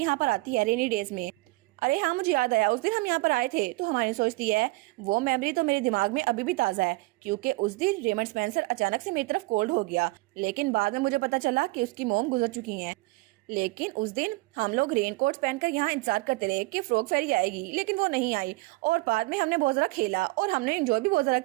पर आती है रेनी डेज में? अरे हाँ मुझे याद आया, उस दिन हम यहाँ पर आए थे। तो हमारी सोचती है वो मेमोरी तो मेरे दिमाग में अभी भी ताज़ा है क्योंकि उस दिन रेमंड स्पेंसर अचानक से मेरी तरफ कोल्ड हो गया, लेकिन बाद में मुझे पता चला कि उसकी मोम गुजर चुकी हैं। लेकिन उस दिन हम लोग रेनकोट पहनकर यहाँ इंतजार करते रहे कि फ्रॉग फेरी आएगी, लेकिन वो नहीं आई और बाद में हमने बहुत ज़्यादा खेला और हमने एंजॉय भी बहुत ज़्यादा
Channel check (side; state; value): left; quieter; 22.8 dB